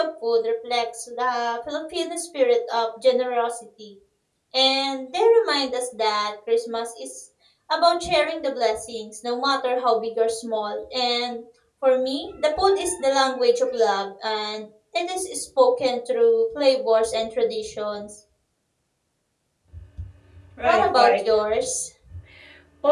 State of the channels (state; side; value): identical; both; correlation 1.00